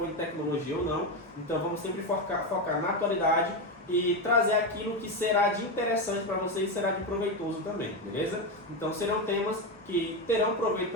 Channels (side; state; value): both; normal; correlation 0.12